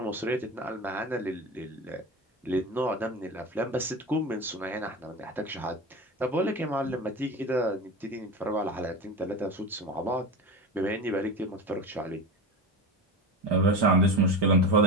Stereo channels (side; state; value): both; normal; correlation 0.27